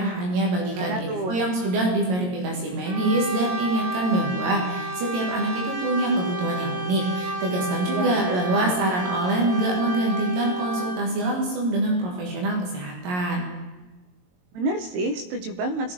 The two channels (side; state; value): left; late; 22 ms